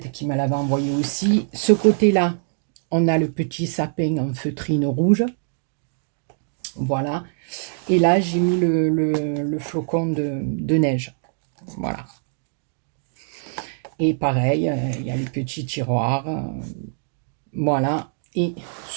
qui me l'avait envoyé aussi. Ce côté-là, on a le petit sapin en feutrine rouge. Voilà. Et là, j'ai mis le flocon de neige. Voilà. Et pareil, il y a les petits tiroirs. Voilà. Et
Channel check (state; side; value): silent; left; digital silence